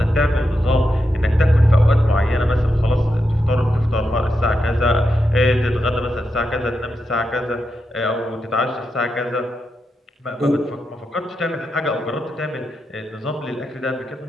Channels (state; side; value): normal; both; correlation 0.86